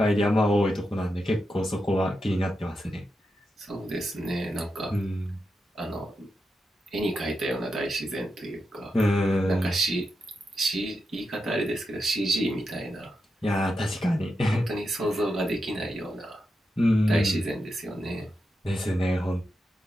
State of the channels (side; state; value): both; normal; correlation 0.87